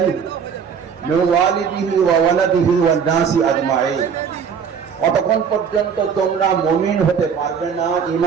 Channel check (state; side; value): quieter; left; 6.8 dB